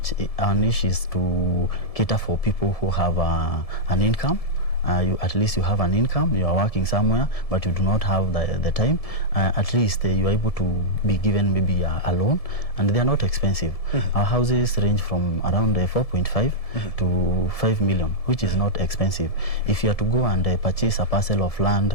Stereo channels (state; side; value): late; right; 1.7 ms